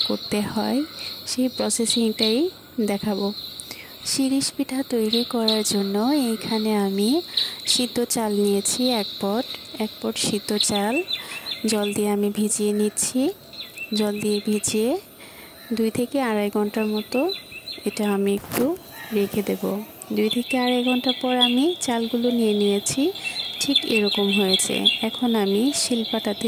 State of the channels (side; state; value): both; identical; correlation 1.00